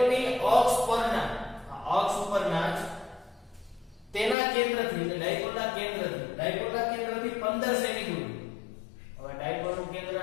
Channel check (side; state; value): right; drops out; at 4.4 s